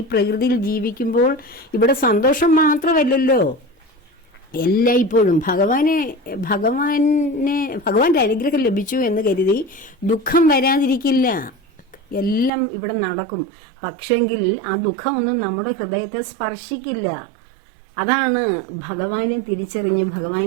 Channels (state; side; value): drops out; left; at 12.5 s